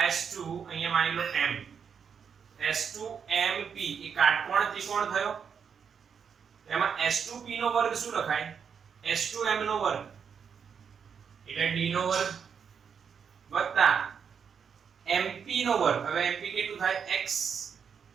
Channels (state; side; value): quieter; left; 6.9 dB